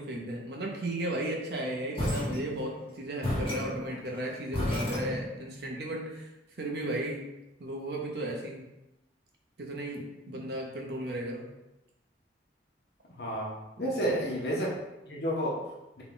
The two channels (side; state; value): both; normal; correlation 0.43